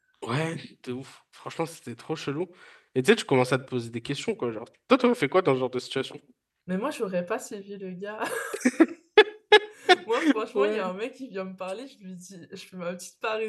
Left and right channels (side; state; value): both; identical; correlation 1.00